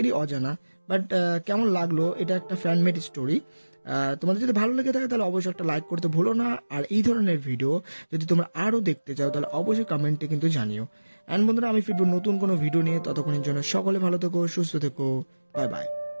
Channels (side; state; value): both; inverted; correlation -1.00